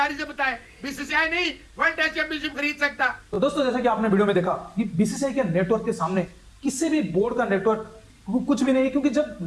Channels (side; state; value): both; identical; correlation 1.00